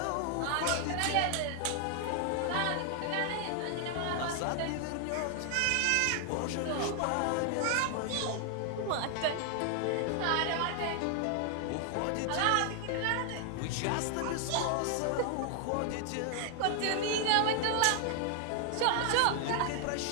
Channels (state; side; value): different; both; correlation 0.00